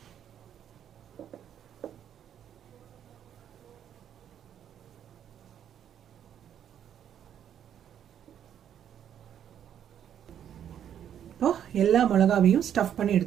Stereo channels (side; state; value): left; quieter; 9.6 dB